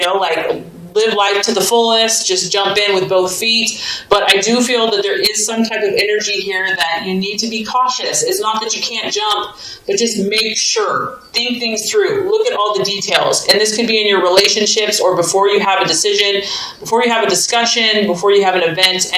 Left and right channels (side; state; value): both; identical; correlation 1.00